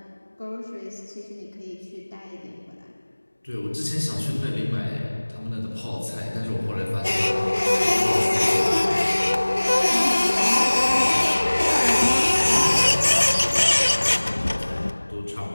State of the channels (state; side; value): inverted; both; correlation -1.00